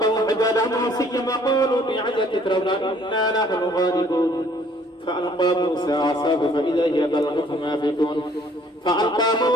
حبالهم عصيا وقالوا بعزة فرعون إنا نحن الغالبون فألقى موسى عصاه فإذا هي تلقف ما فيكون فألقى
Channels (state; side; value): normal; both; correlation 0.60